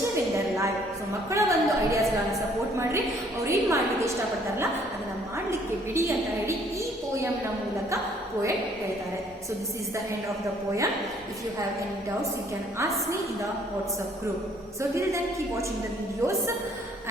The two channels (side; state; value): both; normal; correlation 0.62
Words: in their life. So ಮಕ್ಕಳ ಒಂದು ideas ಗಳನ್ನ support ಮಾಡ್ರಿ, ಅವ್ರು ಏನ್ ಮಾಡ್ಲಿಕ್ಕೆ ಇಷ್ಟಪಡ್ತಾರಲ್ಲ ಅದನ್ನ ಮಾಡ್ಲಿಕ್ಕೆ ಬಿಡಿ ಅಂತ ಹೇಳಿ ಈ poem ನ ಮೂಲಕ poet ಹೇಳ್ತಾರೆ. So this is the end of the poem. If you have any doubts, you can ask me in the WhatsApp group. So till then, keep watching the videos